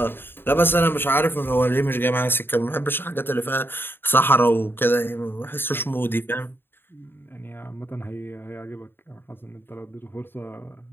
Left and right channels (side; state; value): right; late; 0.10 ms